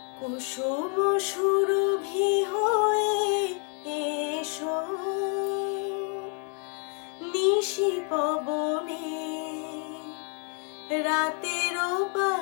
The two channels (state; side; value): quieter; right; 39.0 dB